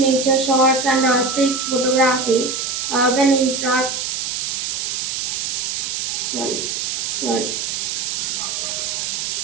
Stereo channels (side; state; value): right; noise; hiss, 2 dB below the sound